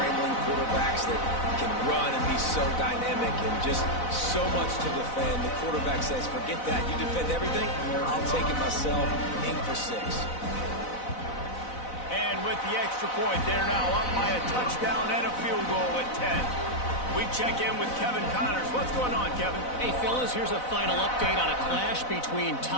quarterbacks that can run and be so dynamic and just so much to defend. The quarterback says, forget that. You defend everything, I'll take it myself. In for 6. And with the extra point, they're now up by a touchdown and a field goal at 10. We check in with Kevin Connors. What's going on, Kevin? Hey, fellas, here's a final update on a clash between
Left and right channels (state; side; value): late; right; 4.0 ms